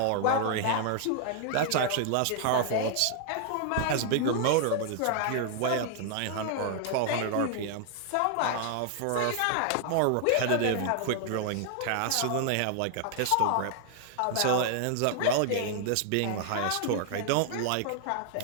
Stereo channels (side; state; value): both; different; correlation 0.00